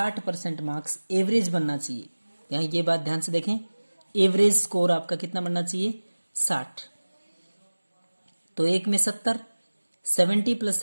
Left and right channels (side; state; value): both; inverted; correlation -1.00